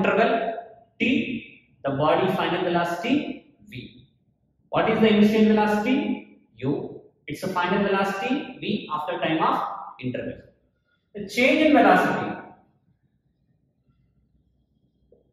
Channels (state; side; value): identical; both; correlation 1.00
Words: t, the body final velocity v. What is the initial velocity? U. It's a final velocity v after time of interval. The change in velocity.